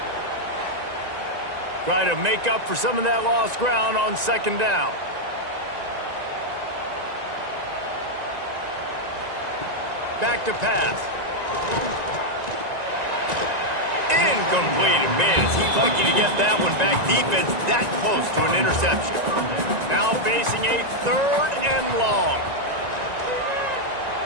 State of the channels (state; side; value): late; left; 1.9 ms